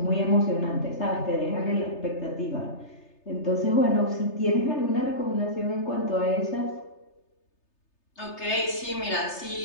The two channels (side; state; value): right; late; 3.3 ms